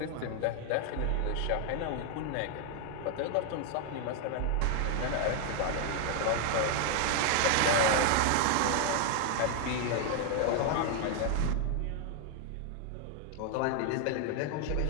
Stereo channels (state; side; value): different; both; correlation 0.00